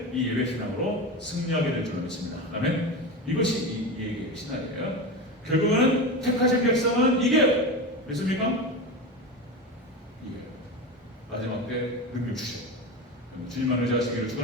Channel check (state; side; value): normal; both; correlation 0.23